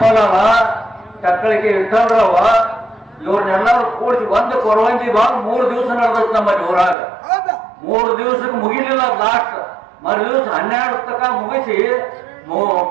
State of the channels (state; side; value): drops out; left; at 7.0 s